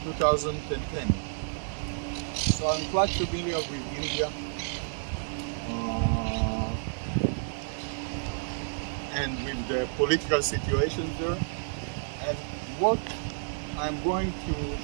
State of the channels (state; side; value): silent; left; 58 dB below the other